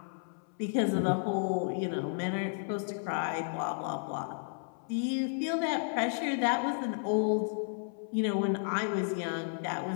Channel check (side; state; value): right; silent; 56 dB below the other